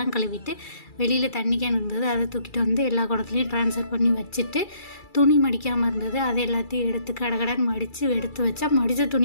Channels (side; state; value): right; late; 2.3 ms